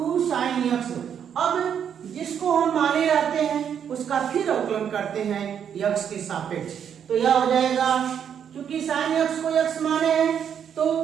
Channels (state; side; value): quieter; left; 8.3 dB